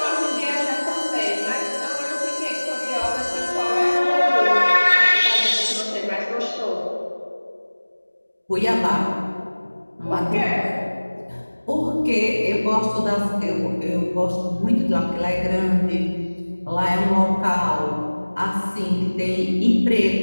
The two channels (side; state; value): both; inverted; correlation -1.00